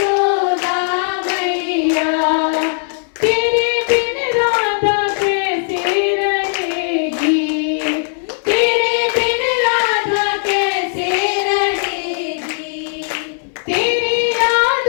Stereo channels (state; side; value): silent; right; 68 dB below the other